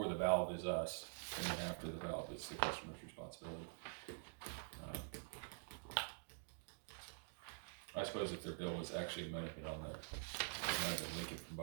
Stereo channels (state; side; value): silent; left; digital silence